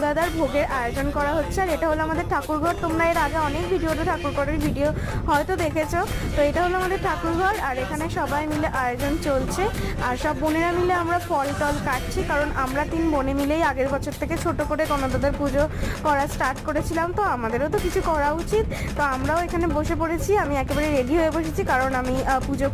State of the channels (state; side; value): identical; both; correlation 1.00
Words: ভোগের আয়োজন করা হচ্ছে। আর এটা হলো আমাদের ঠাকুরঘর। তোমরা এর আগে অনেক ভিডিওতে ঠাকুরঘরের ভিডিও হয়তো দেখেছো। তো এটা হলো আমাদের ঠাকুরঘর, আর এখানে সবাই মিলে আয়োজন চলছে। আর সব বোনেরা মিলে আমরা ফল টল কাটছি, কারণ আমরা 3 বোনে মিলেই আগের বছর থেকে ছোট করে গণদাদার পুজো করা স্টার্ট করেছিলাম। তো আমাদেরও তো কিছু করা উচিত। তো আমরাও এখানে বসে পড়েছি। আমি একেবারে রেডি হয়ে বসেছি, কারণ আমি পুজো